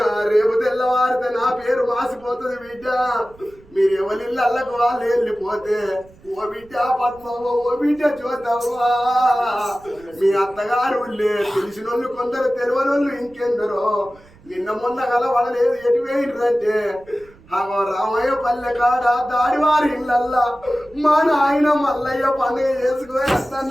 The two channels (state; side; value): noise; right; rumble, 26 dB below the sound